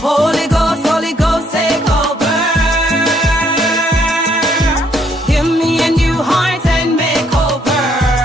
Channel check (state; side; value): normal; both; correlation 0.69